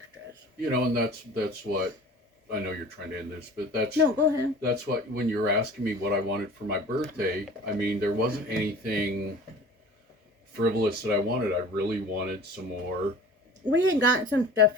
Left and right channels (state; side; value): normal; both; correlation 0.42